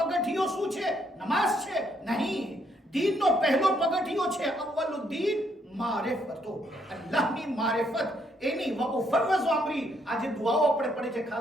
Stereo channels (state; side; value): normal; both; correlation 0.72